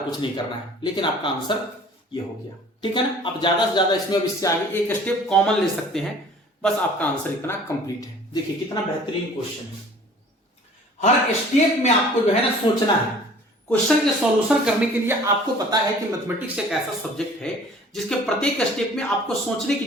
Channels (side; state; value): both; normal; correlation 0.49